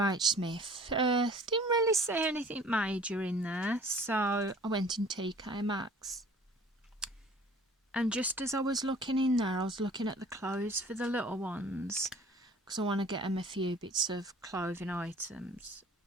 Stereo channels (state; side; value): normal; both; correlation 0.49